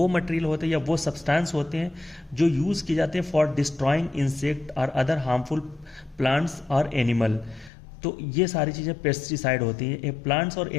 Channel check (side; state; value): right; drops out; at 7.7 s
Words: मटेरियल होते हैं या वो सब्सटेंस होते हैं जो यूज़ किए जाते हैं फॉर डिस्ट्रॉइंग इंसेक्ट और अदर हार्मफुल प्लांट्स और एनिमल। तो ये सारी चीज़ें पेस्टिसाइड होती हैं। ये प्लांट्स और